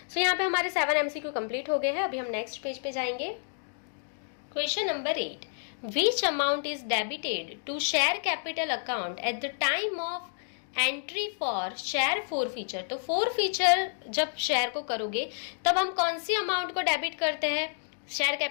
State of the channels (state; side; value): silent; right; digital silence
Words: सो यहाँ पे हमारे 7 एमसीक्यू कंप्लीट हो गए हैं। अभी हम नेक्स्ट पेज पे जाएंगे। Question number 8, which amount is debited to share capital account at the time of entry for share forfeiture. तो फॉरफीचर जब शेयर को करोगे तब हम कौन सी अमाउंट को डेबिट करते हैं शेयर